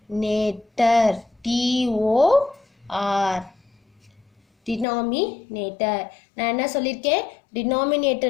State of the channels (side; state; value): right; drops out; at 4.9 s